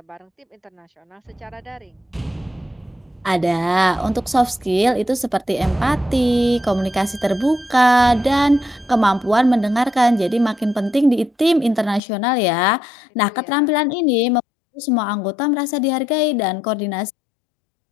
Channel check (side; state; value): right; drops out; at 12.0 s